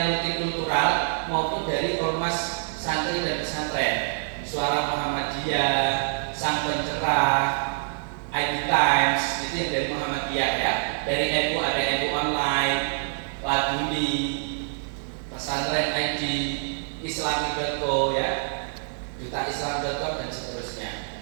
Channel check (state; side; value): silent; left; 61 dB below the other